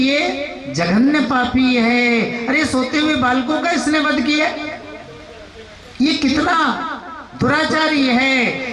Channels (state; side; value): identical; both; correlation 1.00